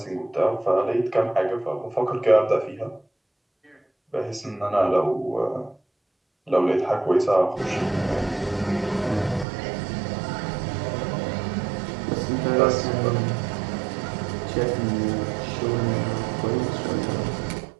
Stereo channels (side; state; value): left; drops out; at 9.5 s